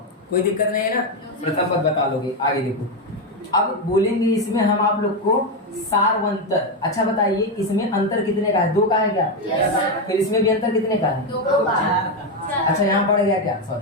कोई दिक्कत नहीं है ना, प्रथम पद बता लोगे। आगे देखो, अब बोलेंगे इसमें हम आप लोग को सारवंतर। अच्छा बताइए इसमें अंतर कितने का है? 2 का है क्या? yes, फिर इसमें भी अंतर कितने का है? 2 का। अच्छा यहाँ पड़ गया क्या?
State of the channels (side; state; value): both; normal; correlation 0.08